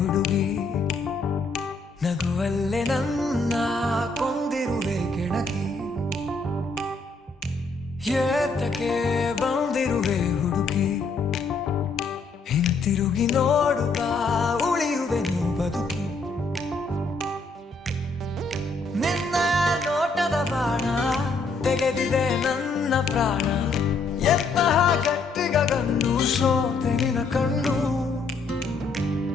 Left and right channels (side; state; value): right; quieter; 3.8 dB